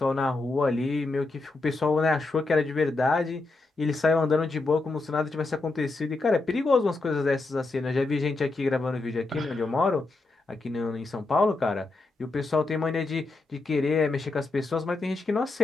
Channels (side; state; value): right; quieter; 3.3 dB